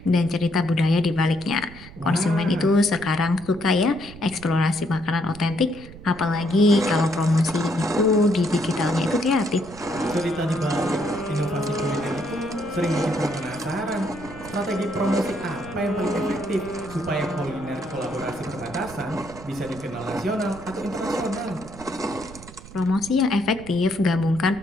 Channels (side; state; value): right; noise; rumble, 17 dB below the sound